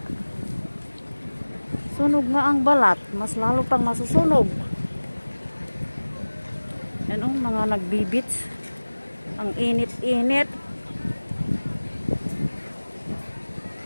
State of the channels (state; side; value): inverted; both; correlation -1.00